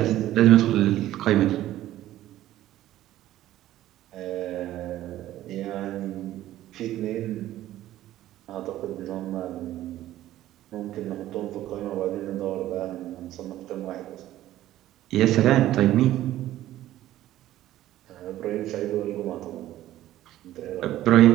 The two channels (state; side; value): quieter; left; 14.0 dB